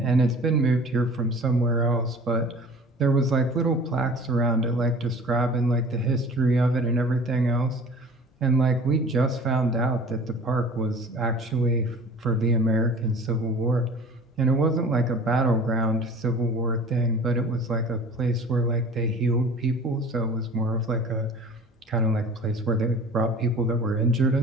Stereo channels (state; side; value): normal; both; correlation 0.44